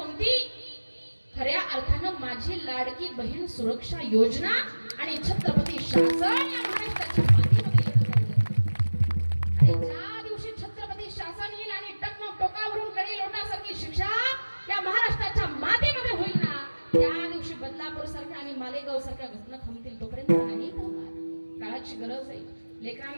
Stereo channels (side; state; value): both; inverted; correlation -1.00